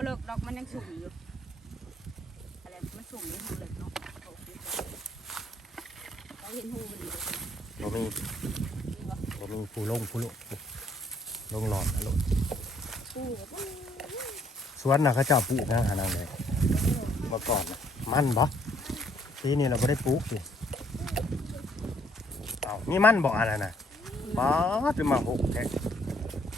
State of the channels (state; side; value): normal; both; correlation 0.66